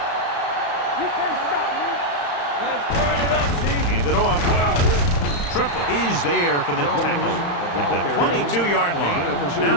Hand it off. Triplett is there for the tackle at the 22-yard line. Now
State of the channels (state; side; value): late; right; 35 ms